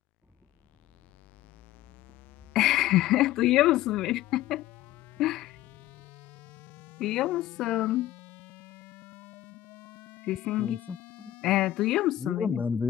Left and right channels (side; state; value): right; quieter; 14.1 dB